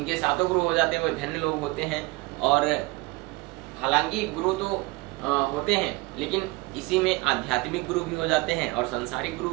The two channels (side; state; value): left; quieter; 23.2 dB